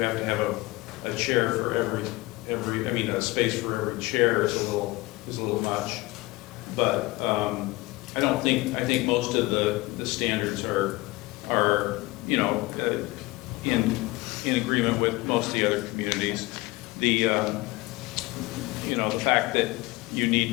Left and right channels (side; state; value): right; quieter; 21.5 dB